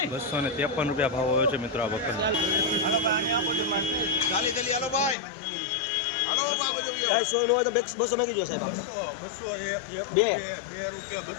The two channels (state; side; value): drops out; right; at 5.2 s